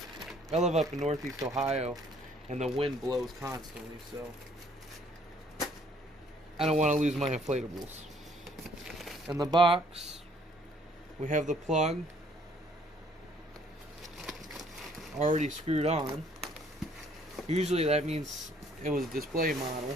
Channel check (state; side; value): normal; both; correlation 0.62